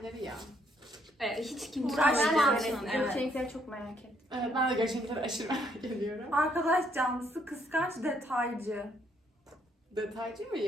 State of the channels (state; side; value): normal; both; correlation 0.70